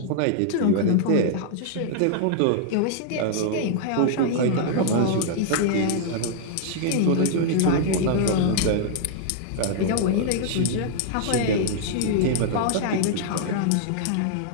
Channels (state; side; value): different; both; correlation -0.01